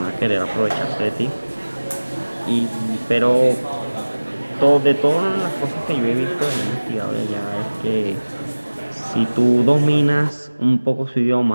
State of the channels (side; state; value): both; inverted; correlation -1.00